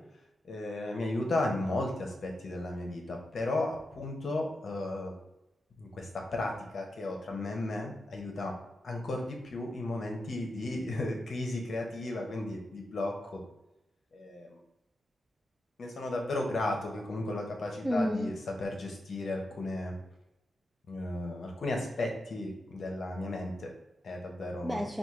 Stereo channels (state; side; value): normal; both; correlation 0.87